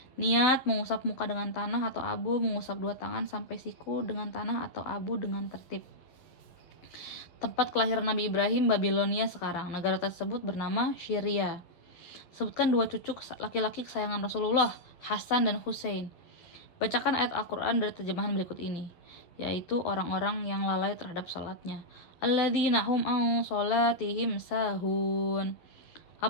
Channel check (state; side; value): late; right; 12 ms